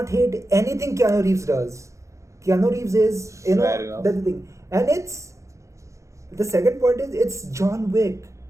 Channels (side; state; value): left; late; 0.15 ms